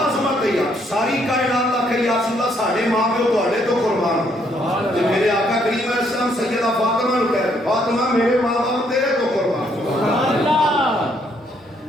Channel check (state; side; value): normal; both; correlation 0.70